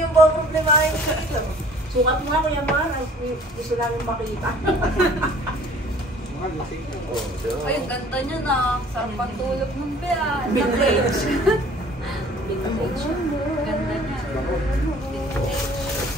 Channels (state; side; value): normal; both; correlation 0.52